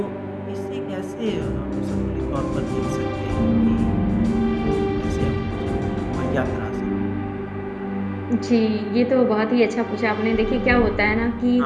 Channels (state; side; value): identical; both; correlation 1.00